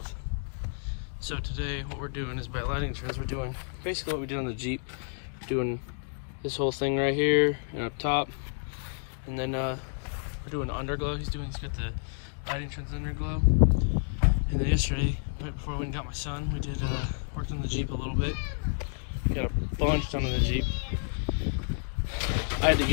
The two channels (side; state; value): right; silent; digital silence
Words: So today what we're doing is by lighting trends, we're doing basically what we did on the Jeep. We're doing this whole thing right here and up top. And then we're doing underglow. He's got the lighting trends underglow. And then yesterday, right before I went and got my son, we did worked on the Jeep a little bit. Got a bunch done on the Jeep. I had to